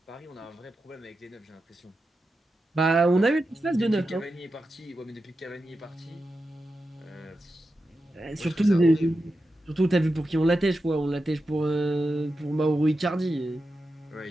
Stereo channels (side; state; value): both; normal; correlation 0.90